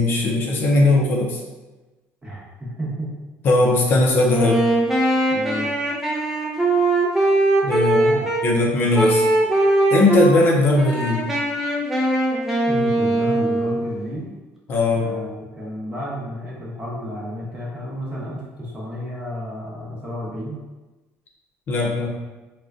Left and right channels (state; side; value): normal; both; correlation 0.68